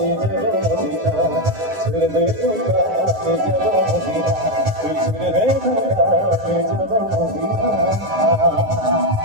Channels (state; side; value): late; left; 9.1 ms